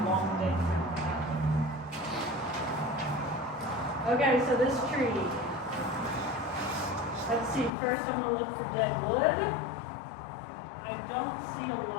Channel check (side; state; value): right; drops out; at 7.7 s